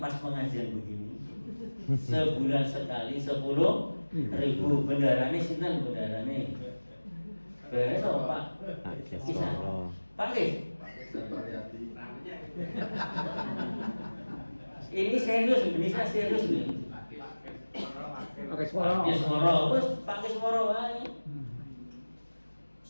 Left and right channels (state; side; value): inverted; both; correlation -1.00